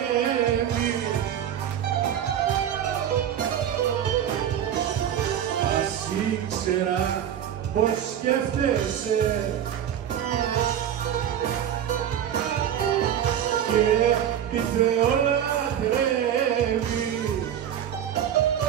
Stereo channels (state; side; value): quieter; left; 9.8 dB